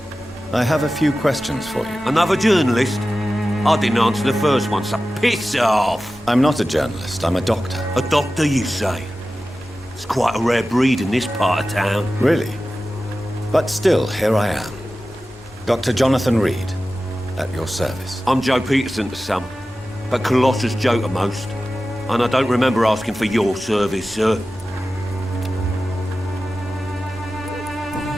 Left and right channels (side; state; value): both; normal; correlation 0.94